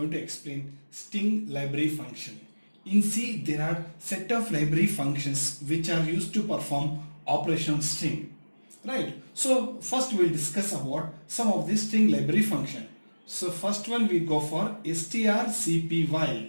to explain string library function. In C there are set of library functions which are used to perform operation on string. Right. So first we will discuss about some of these string library function. So first one we go for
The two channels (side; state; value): both; inverted; correlation -1.00